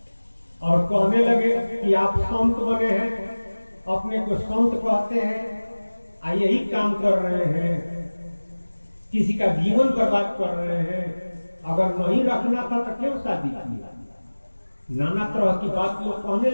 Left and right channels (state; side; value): inverted; both; correlation -1.00